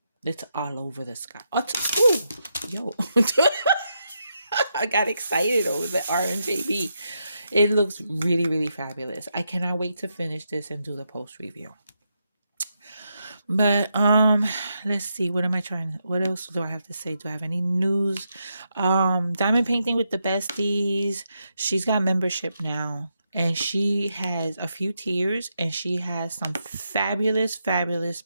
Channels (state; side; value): inverted; both; correlation -0.82